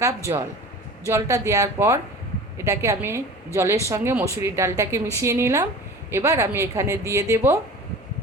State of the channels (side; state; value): both; normal; correlation 0.39